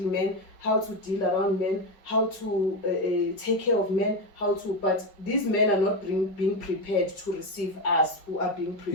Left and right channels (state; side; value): late; right; 5.0 ms